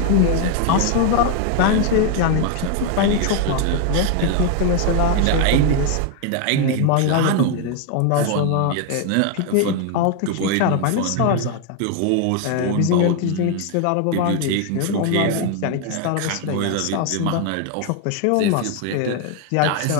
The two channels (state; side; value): different; both; correlation 0.01